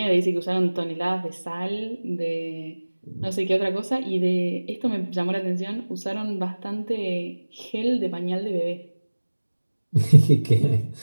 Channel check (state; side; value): inverted; both; correlation -1.00